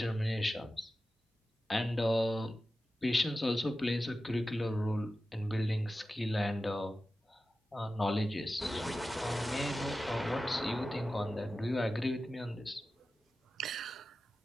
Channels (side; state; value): both; normal; correlation 0.94